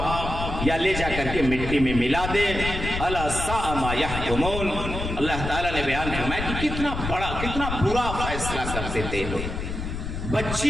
یا لے جا کر کے مٹی میں ملا دے. الا ساء ما یحکمون. اللہ تعالیٰ نے بیان فرمایا کہ کتنا بڑا کتنا برا فیصلہ کرتے تھے لوگ.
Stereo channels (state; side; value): noise; left; rumble, 5 dB below the sound